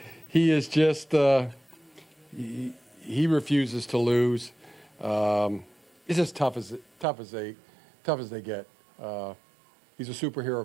He is just he refuses to lose. He's just tough as they get. He's a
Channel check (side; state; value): left; drops out; at 7.1 s